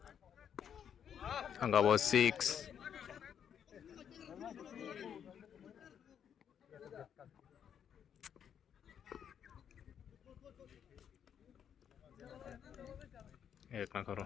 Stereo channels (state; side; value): quieter; right; 8.5 dB